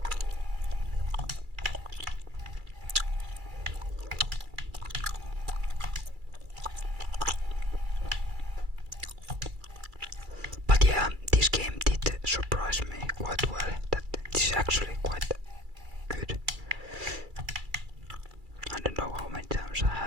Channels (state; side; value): late; left; 2.3 ms